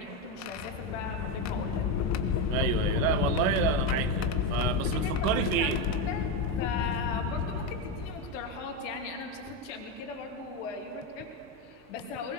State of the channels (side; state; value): both; normal; correlation 0.10